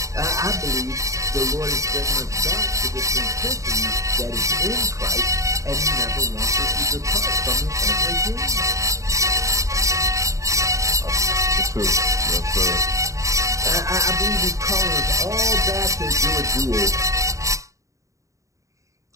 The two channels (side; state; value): left; late; 0.15 ms